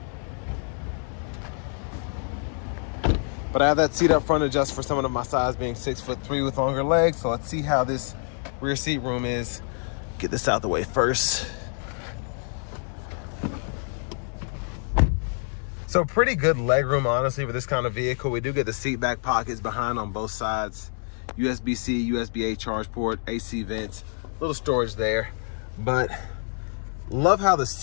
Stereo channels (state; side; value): silent; right; 55 dB below the other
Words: But I have that seat up front adjust for someone of my size, being 6'3" with longer legs. So let's see how this rear seat room is. Get this out the way first. So pretty good leg room, honestly, for this kind of vehicle. We do get the seat back pockets behind on both sides. USB-C, USB-A charge port, AC vents, little storage there. But love how the